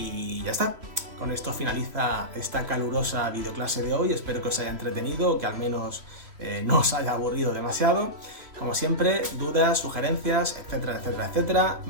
ya está. Con esto finaliza esta calurosa videoclase de hoy. Espero que os haya entretenido, que al menos no os haya aburrido demasiado. Como siempre, dudas, sugerencias, etcétera, etcétera, etcétera,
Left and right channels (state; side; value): late; left; 3.0 ms